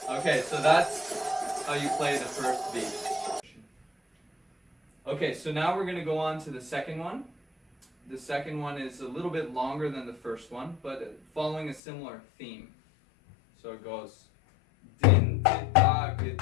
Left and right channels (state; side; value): drops out; right; at 11.8 s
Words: Okay, so that's how you play the first beat. Okay, so now we're going to go on to the second one. The second one is a little bit longer than the first one, but following a similar theme. So it goes Dhin Dida Ge